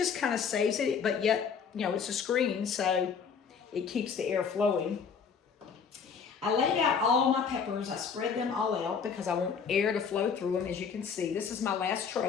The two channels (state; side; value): quieter; right; 6.3 dB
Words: kind of saves it, but yet, you know, it's a screen, so it keeps the air flowing. I laid out all my peppers. I spread them all out because I want air to flow through them. As you can see, this is my last